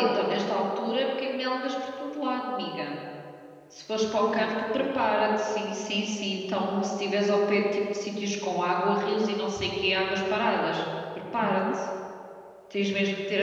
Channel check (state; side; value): identical; both; correlation 1.00